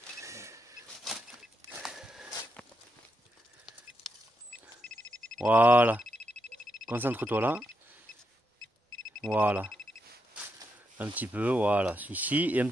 Voilà. Concentre-toi là. Voilà. Un petit peu, voilà. Ici et un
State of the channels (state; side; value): normal; both; correlation 0.83